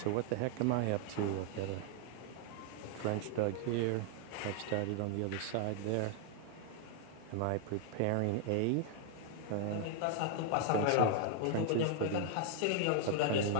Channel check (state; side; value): different; both; correlation 0.00